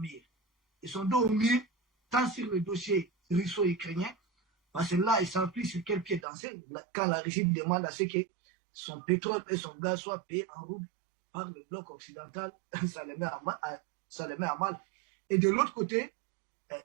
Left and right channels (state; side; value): drops out; left; at 6.2 s